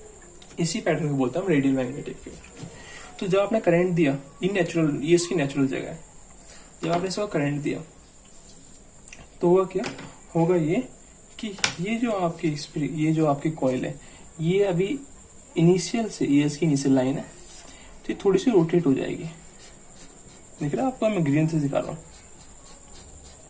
इसी पैटर्न को बोलते हैं हम रेडियल मैग्नेटिक फील्ड। तो जब आपने करंट दिया, ये नेचुरल, ये इसकी नेचुरल जगह है, जब आपने इसको करंट दिया तो होगा क्या, होगा ये कि ये जो आपकी कॉइल है, ये अभी इनिशियल से, ये इसकी इनिशियल लाइन है, तो ये थोड़ी सी रोटेट हो जाएगी। देख रहे हैं आपको, मैं ग्रीन से दिखा रहा हूँ।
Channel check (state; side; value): identical; both; correlation 1.00